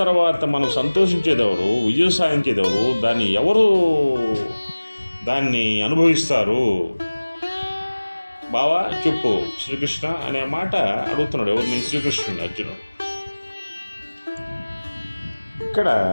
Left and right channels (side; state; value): both; inverted; correlation -1.00